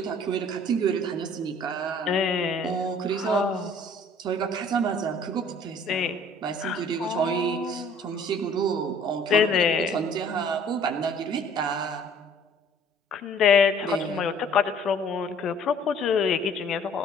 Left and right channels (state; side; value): normal; both; correlation 0.54